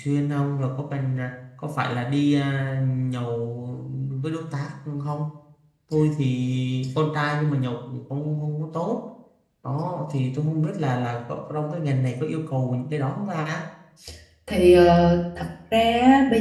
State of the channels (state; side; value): identical; both; correlation 1.00